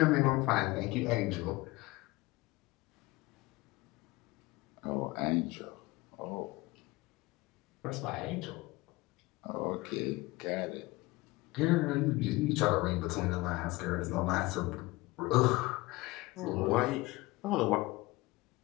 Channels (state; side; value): quieter; right; 21.3 dB